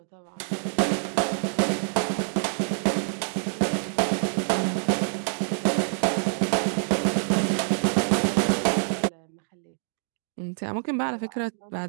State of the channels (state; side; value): silent; left; digital silence